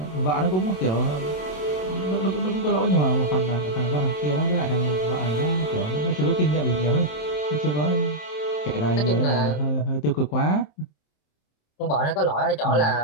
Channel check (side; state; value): right; late; 27 ms